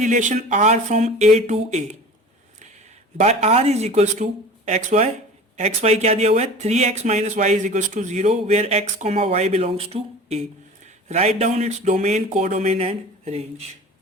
R from A to A by R is equals to X Y. X Y क्या दिया हुआ है, 3x minus Y is equals to 0 where x comma Y belongs to A. Write down its domain, codomain and range.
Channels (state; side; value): normal; both; correlation 0.39